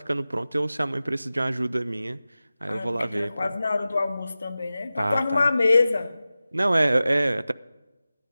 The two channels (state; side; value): inverted; both; correlation -0.95